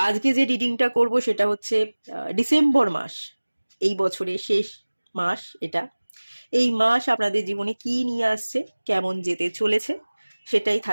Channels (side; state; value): both; inverted; correlation -1.00